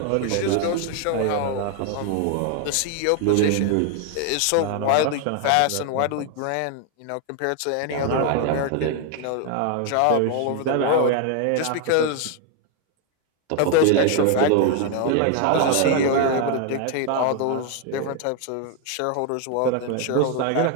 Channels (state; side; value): different; both; correlation 0.01